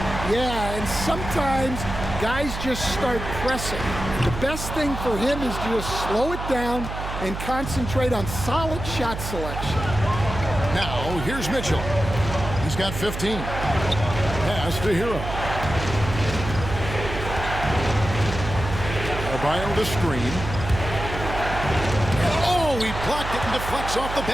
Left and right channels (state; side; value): noise; right; hum, 7 dB below the sound